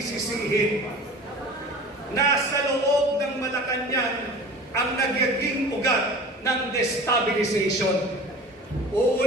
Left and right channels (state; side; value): normal; both; correlation 0.39